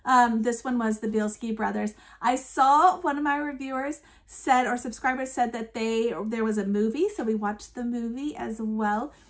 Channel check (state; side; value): identical; both; correlation 1.00